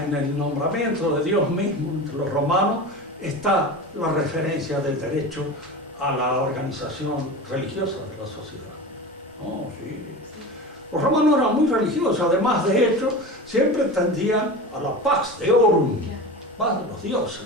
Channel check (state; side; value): normal; both; correlation 0.29